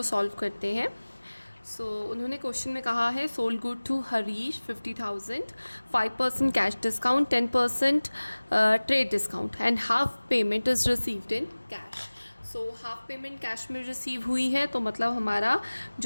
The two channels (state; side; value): inverted; both; correlation -1.00